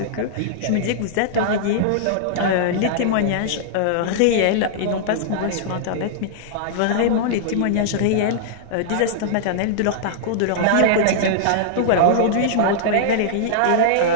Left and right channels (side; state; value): both; different; correlation -0.02